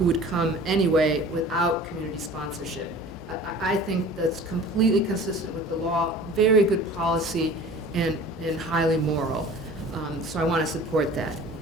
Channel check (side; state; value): both; normal; correlation 0.43